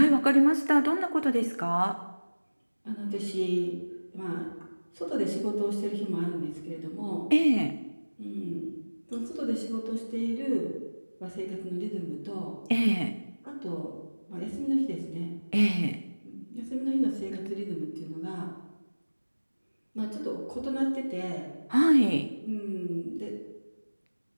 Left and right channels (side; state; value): both; inverted; correlation -1.00